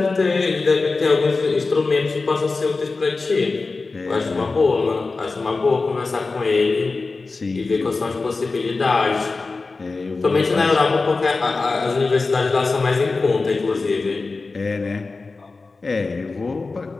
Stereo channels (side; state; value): right; quieter; 3.9 dB